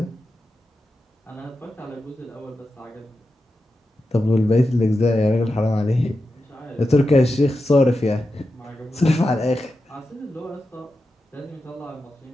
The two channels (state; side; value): normal; both; correlation 0.90